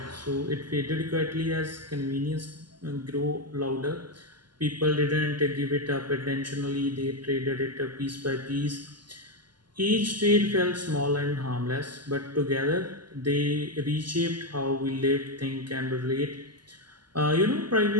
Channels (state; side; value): late; left; 0.71 ms